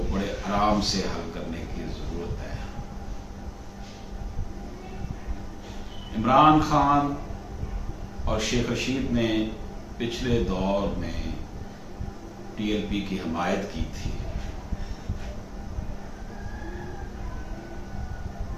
بڑے آرام سے حل کرنے کی ضرورت ہے۔ عمران خان اور شیخ رشید نے پچھلے دور میں ٹی ایل پی کی حمایت کی تھی،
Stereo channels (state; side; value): identical; both; correlation 1.00